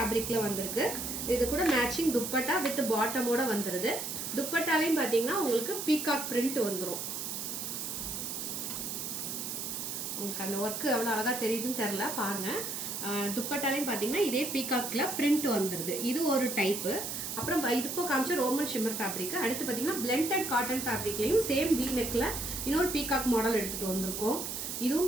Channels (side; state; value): right; noise; hiss, 4 dB below the sound